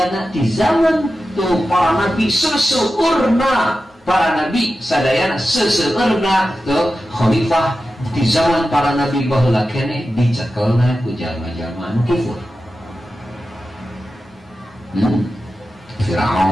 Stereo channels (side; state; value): both; normal; correlation 0.92